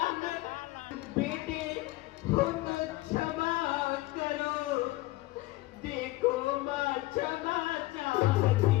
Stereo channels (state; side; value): quieter; right; 19.1 dB